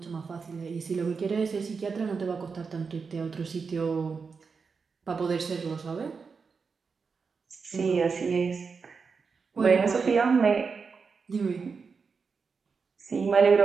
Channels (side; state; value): left; quieter; 5.2 dB